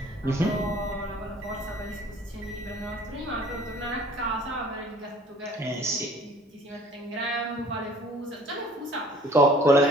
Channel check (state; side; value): normal; both; correlation 0.52